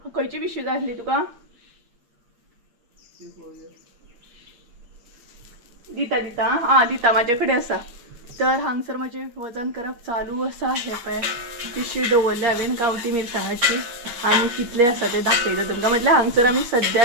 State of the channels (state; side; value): late; left; 8.5 ms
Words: खंयची पिशवी जाय आसली तुका? दिता दिता आं दिता म्हाजे कडेन आसा. तर हांगसर म्हजें वजन करप चालू आसा. हे पळय पिशवी दवरल्या हांवें गांवठी मिरसांगाची आनी कितले आसा ते दाखयता तुमकां. म्हटल्यार हांगसर आमी